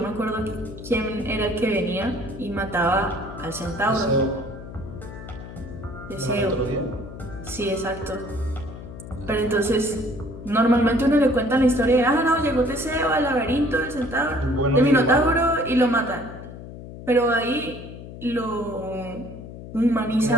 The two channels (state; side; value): noise; left; hum, 13 dB below the sound